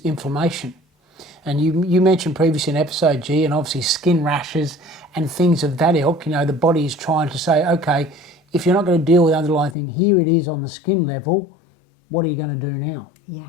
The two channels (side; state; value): right; drops out; at 9.8 s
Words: And you mentioned previously in episode G, and obviously skin rashes and things of that ilk. The body is trying to say, okay, if you're not going to deal with the underlying thing, here it is on the skin level, what are you going to do now?